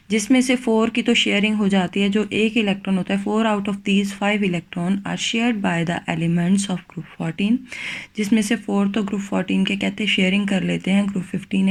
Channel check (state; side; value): identical; both; correlation 1.00